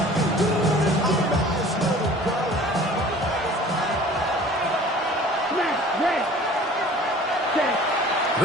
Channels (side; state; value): both; normal; correlation 0.47